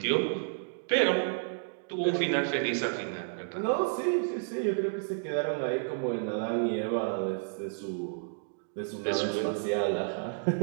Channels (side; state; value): left; silent; digital silence